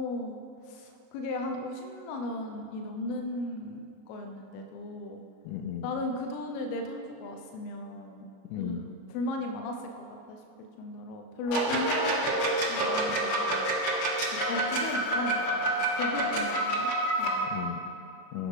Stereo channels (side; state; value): right; late; 36 ms